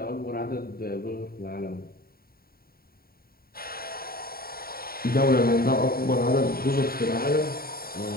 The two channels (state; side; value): late; right; 0.43 ms